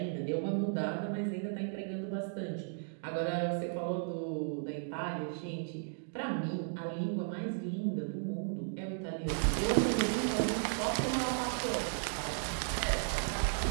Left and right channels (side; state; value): left; silent; digital silence